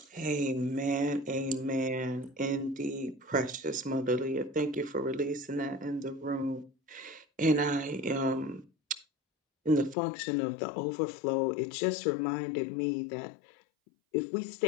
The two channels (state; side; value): drops out; right; at 10.0 s